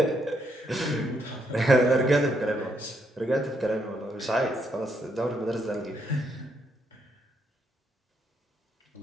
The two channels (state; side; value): normal; both; correlation 0.76